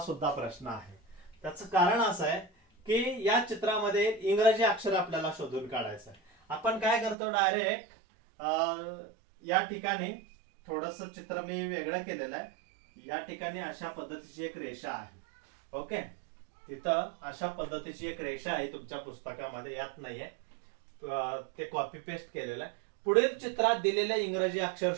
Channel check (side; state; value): left; drops out; at 7.2 s